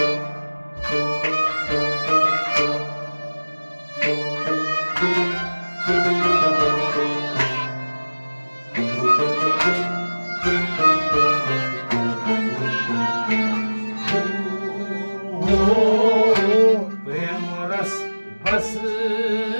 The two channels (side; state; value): both; inverted; correlation -1.00